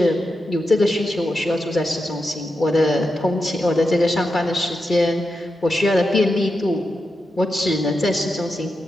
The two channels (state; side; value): normal; both; correlation 0.88